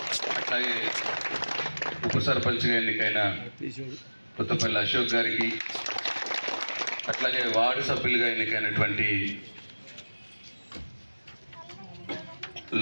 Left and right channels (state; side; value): inverted; both; correlation -1.00